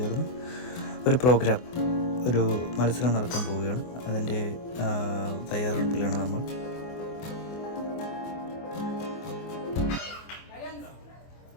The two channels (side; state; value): right; late; 24 ms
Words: ഒരു മത്സരം നടത്താൻ പോവുകയാണ്. അതിൻ്റെ തയ്യാറെടുപ്പിലാണ് നമ്മൾ.